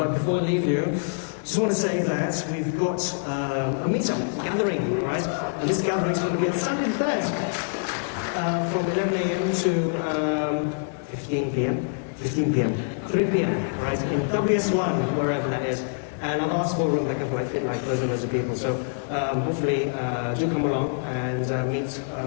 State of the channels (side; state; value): right; silent; 61 dB below the other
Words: before I leave you, just want to say that we've got a meetup gathering, right? And this gathering is going to be on Sunday the 3rd, from 11 a.m. to 15 p.m. 15 p.m. 3 p.m. right? In WS1, wherever that is. And our last forum that can fit like dozens of people. So hopefully do come along and meet